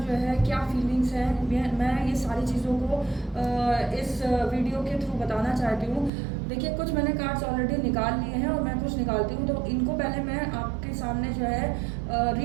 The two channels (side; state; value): left; drops out; at 6.1 s